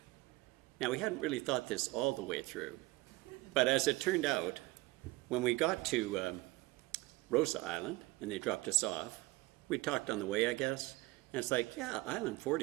Now, we hadn't really thought this all the way through, but as it turned out, when we got to Rosa Island, and they dropped us off, we talked on the way, I guess, and it's like, yeah, Island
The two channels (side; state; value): left; quieter; 20.8 dB